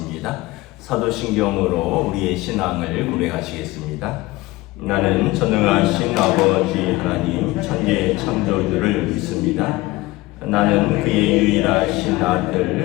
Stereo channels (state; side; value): quieter; right; 19.8 dB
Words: 사도신경으로 우리의 신앙을 고백하시겠습니다. 나는 전능하신 아버지 하나님 천지의 창조주를 믿습니다. 나는 그의 유일하신